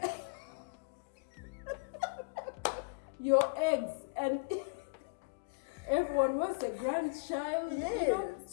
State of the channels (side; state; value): right; quieter; 33.1 dB